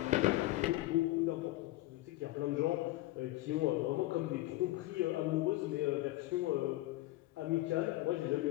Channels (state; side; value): quieter; right; 17.7 dB